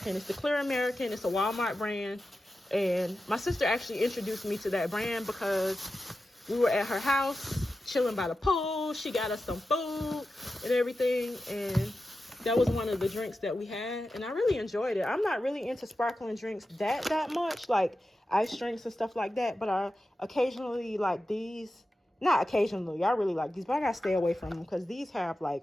It's the Clear American. It's a Walmart brand, and my sister actually introduced me to that brand because we were at her house chilling by the pool. She got us some food and everything, and that was one of the drinks that we had, and I really enjoyed it. I'm not really into sparkling drinks that much, like ice drinks and stuff like that, but I occasionally like these. Not occasionally, I really like these, but I gotta stay away from them because these have like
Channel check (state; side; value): normal; both; correlation 0.92